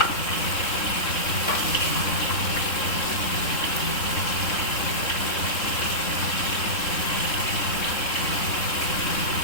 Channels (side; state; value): right; late; 3.6 ms